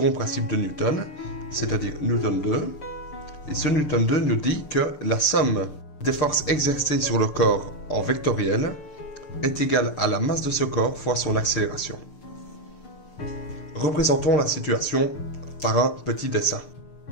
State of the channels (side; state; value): right; late; 6.7 ms